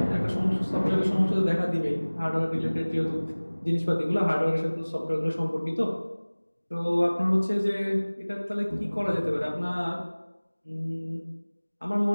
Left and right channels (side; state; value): both; inverted; correlation -1.00